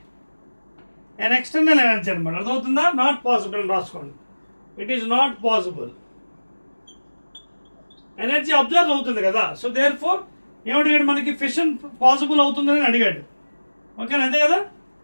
and external energy అనమాట. అర్థమవుతుందా, నాట్ పాసిబుల్ అని రాసుకోండి. It is not possible, energy observe అవుతుంది కదా. సో దేర్ ఫోర్ ఏమడిగాడు మనకి, ఫిషన్ పాసిబుల్ అవుతుందని అడిగాడు. ఓకేనా, అంతే కదా,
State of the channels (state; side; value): inverted; both; correlation -1.00